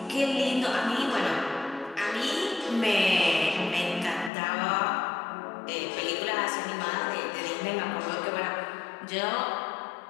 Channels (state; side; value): drops out; right; at 4.3 s